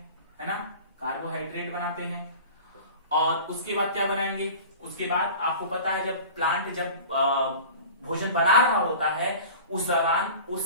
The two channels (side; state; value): both; inverted; correlation -0.39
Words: है ना, कार्बोहाइड्रेट बनाते हैं। और उसके बाद क्या बनाएंगे, उसके बाद आपको पता है जब प्लांट भोजन बना रहा होता है उस दौरान